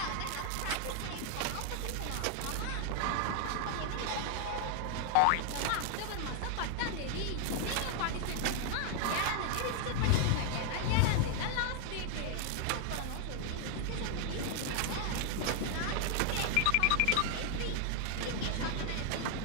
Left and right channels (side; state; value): both; different; correlation 0.00